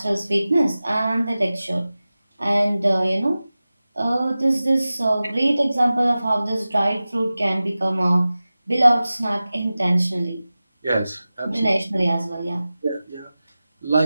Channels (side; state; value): both; inverted; correlation -0.96